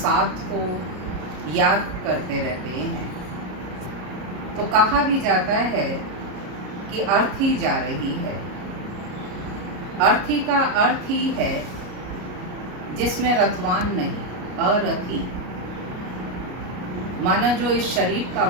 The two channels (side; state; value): left; late; 33 ms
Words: को याद करते रहते हैं। तो कहा भी जाता है कि अर्थी जा रही है। अर्थी का अर्थ ही है जिसमें रथवान नहीं, अरथी। माना जो इस शरीर का